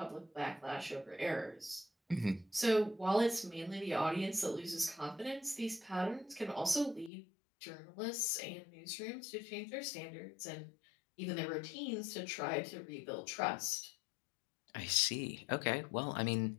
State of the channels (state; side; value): drops out; right; at 7.1 s